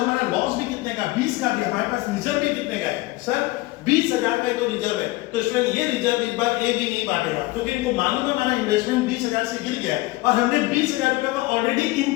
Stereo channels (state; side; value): quieter; right; 20.4 dB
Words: लॉस भी कितने का? 20 का भी। हमारे पास रिजर्व भी कितने का है सर? 20,000 का ही तो रिजर्व है। तो इसमें ये रिजर्व इस बार ए भी नहीं बांटेगा, क्योंकि इनको मालूम है हमारा इन्वेस्टमेंट 20,000 से गिर गया है और हमने 20,000 रुपए का ऑलरेडी